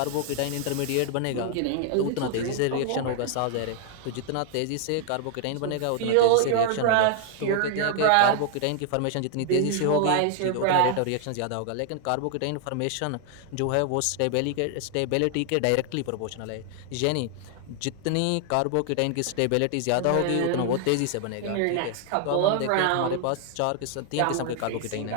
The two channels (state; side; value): different; both; correlation 0.00